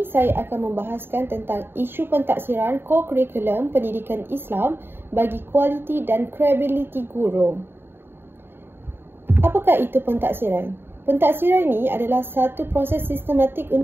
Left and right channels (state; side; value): late; left; 0.11 ms